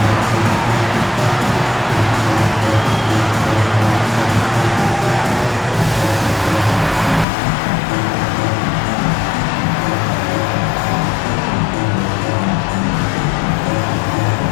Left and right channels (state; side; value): drops out; right; at 7.2 s